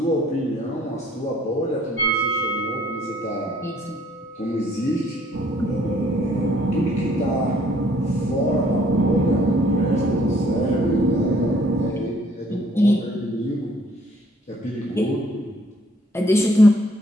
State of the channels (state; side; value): normal; both; correlation 0.62